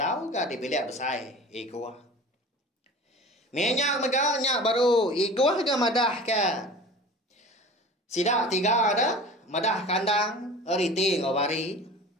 ke di bilik besai igua. Minyak mega nyak baru igua ke madah ke. Sidak 3 ada madah kandang eriti ngawari.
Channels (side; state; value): both; normal; correlation 0.39